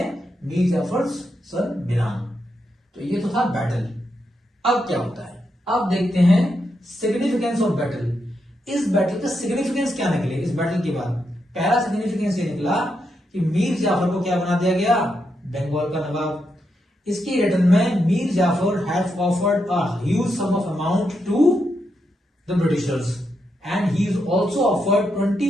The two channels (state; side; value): normal; both; correlation 0.83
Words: Mir Jafar son Miran. तो ये तो था बैटल। अब क्या होता है? अब देखते हैं सिग्निफिकेंस ऑफ बैटल। इस बैटल का सिग्निफिकेंस क्या निकले इस बैटल के बाद? पहला सिग्निफिकेंस ये निकला कि मीर जाफर को क्या बना दिया गया, बंगाल का नवाब। इसकी रिटर्न में Mir Jafar have offered a huge sum of amount to the britishers and he is also offered